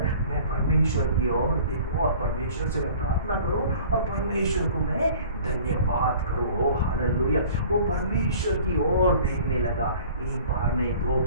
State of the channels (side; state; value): both; inverted; correlation -0.47